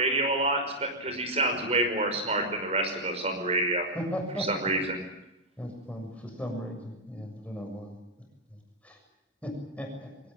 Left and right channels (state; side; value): normal; both; correlation -0.03